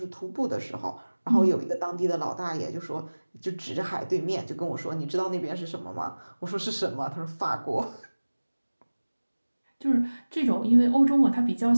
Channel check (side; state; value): both; inverted; correlation -1.00